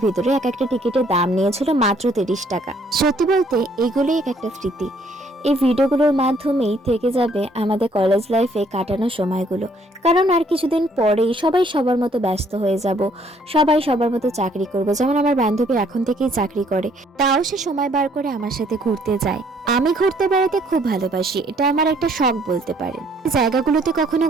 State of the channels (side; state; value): both; normal; correlation 0.64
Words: ভিতরে। এক একটা টিকিটের দাম নিয়েছিল মাত্র 30 টাকা। সত্যি বলতে এগুলোই এক একটা স্মৃতি। এই ভিডিওগুলোর মাধ্যমেই থেকে যাবে আমাদের কলেজ লাইফে কাটানো সময়গুলো, কারণ আর কিছুদিন পরেই সবাই সবার মতো ব্যস্ত হয়ে যাব, সবাই সবার মতো চাকরি করব। যেমন আমার বান্ধবী এখন থেকেই চাকরি করে, তাও সে সময় বার করে আমার সাথে ঘুরতে যায়। আমি ঘুরতে বেড়াতে খুব ভালোবাসি, এটা আমার একটা শখ বলতে পারেন। জায়গাগুলোতে কখনো